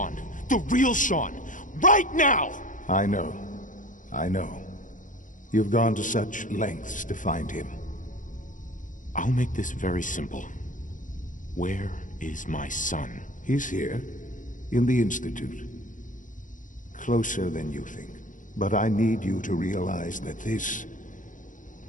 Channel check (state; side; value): late; right; 0.38 ms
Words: The real Shaun. Right now! I know. You've gone to such lengths to find him. I'll make this very simple. Where is my son? He's here, in the Institute. Closer than you think. But I need you to realize that this